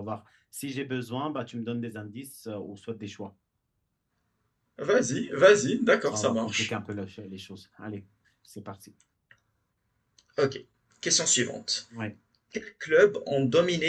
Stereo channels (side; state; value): both; identical; correlation 1.00